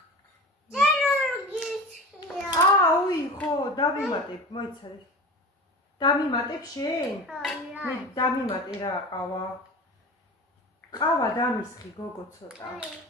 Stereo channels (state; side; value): normal; both; correlation 0.33